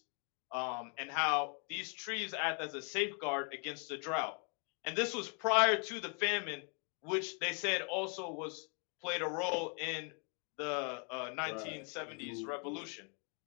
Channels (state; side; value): quieter; right; 39.6 dB